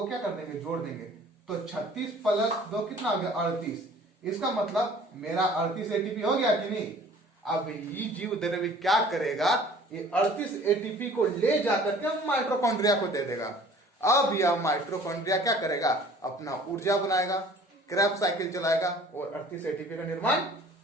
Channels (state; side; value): normal; both; correlation 0.50